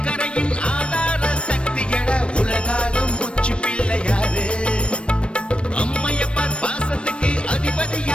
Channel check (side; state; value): right; late; 0.058 ms